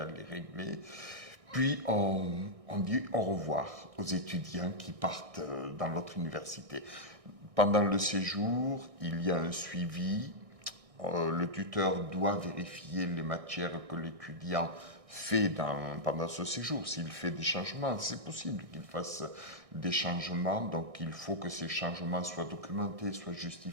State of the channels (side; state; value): left; late; 1.6 ms